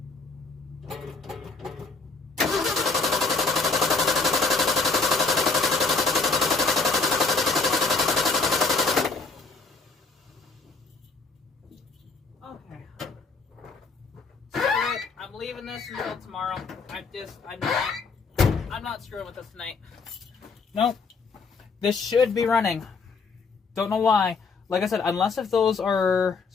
Okay. I'm leaving this until tomorrow. I'm not screwing with this tonight. Nope. This should be running. Don't know why. Like I said, unless if those are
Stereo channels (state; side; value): quieter; right; 4.3 dB